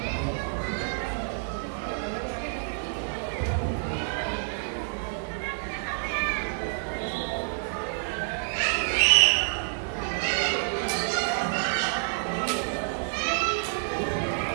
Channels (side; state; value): left; silent; 59 dB below the other